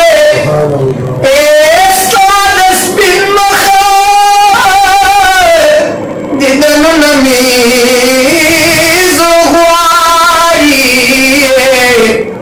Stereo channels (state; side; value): identical; both; correlation 1.00